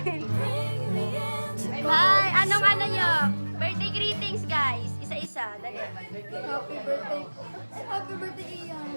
Hi! Anong ano nyo? Birthday greetings guys. Isa-isa. Dali. Happy birthday. Happy birthday,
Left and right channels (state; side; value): inverted; both; correlation -1.00